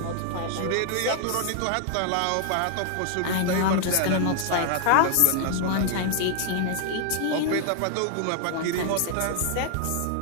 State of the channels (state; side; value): different; both; correlation 0.00